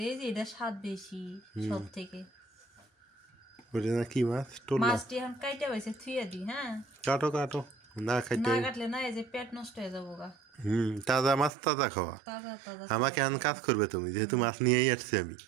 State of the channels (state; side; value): drops out; left; at 11.5 s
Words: এই যে এটা স্বাদ বেশি সব থেকে। ওটা না কি মাছ? টোলা। মাছটি এখন কাইটা পাইছে থুইয়া দি। হ্যাঁ, কাটো কাটো, না খাইতে। না কাটলে না এই যে পেট নষ্ট হয়ে যাবো গা। তাজা মাছ তাজা খাওয়া। তাজা তাজা আমাকে এখন কাজ করবে তুমি, যেহেতু মাছ নিয়েই আসছি আমি।